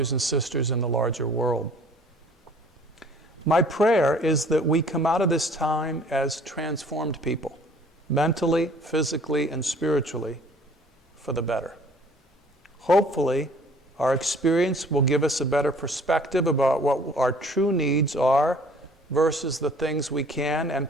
and sisters in the larger world. My prayer is that we come out of this time as transformed people, mentally, physically, and spiritually, for the better. Hopefully, our experience will give us a better perspective about what our true needs are versus the things we can and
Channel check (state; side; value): normal; both; correlation 0.53